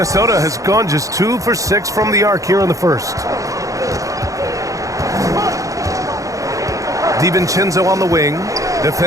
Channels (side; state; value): left; late; 0.16 ms